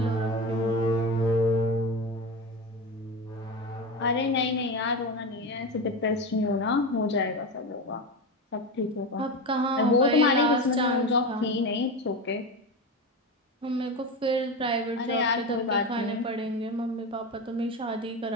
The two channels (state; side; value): normal; both; correlation 0.21